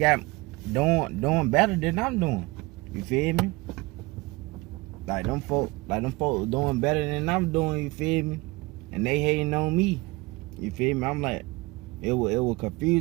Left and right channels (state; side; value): quieter; left; 23.0 dB